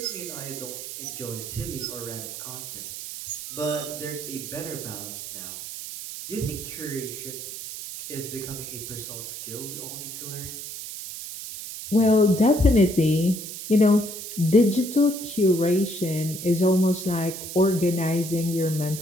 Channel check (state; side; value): noise; right; hiss, 9 dB below the sound